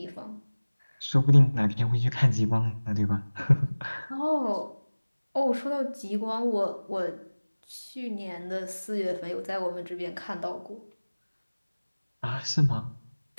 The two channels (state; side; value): inverted; both; correlation -1.00